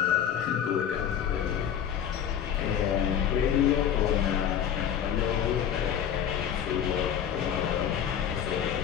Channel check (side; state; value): right; quieter; 9.2 dB